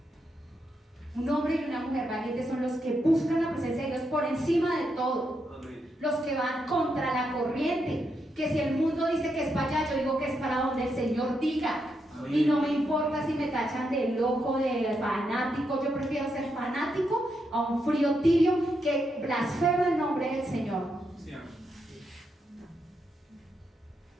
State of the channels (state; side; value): normal; both; correlation 0.82